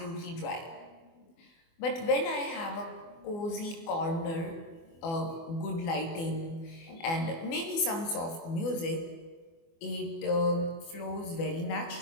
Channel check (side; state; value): right; late; 24 ms